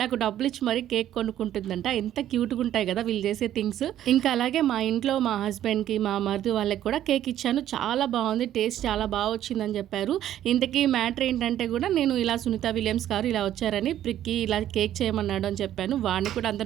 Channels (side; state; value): left; quieter; 11.8 dB